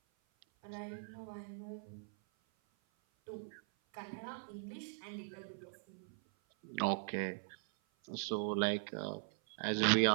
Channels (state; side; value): silent; left; 51 dB below the other